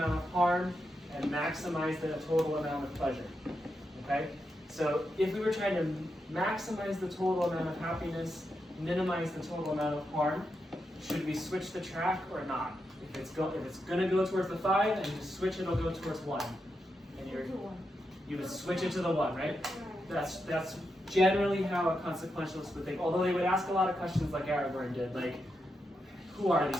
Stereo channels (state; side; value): normal; both; correlation 0.85